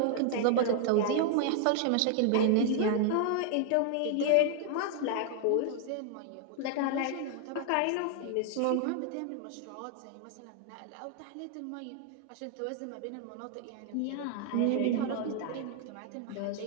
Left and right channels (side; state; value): both; different; correlation 0.00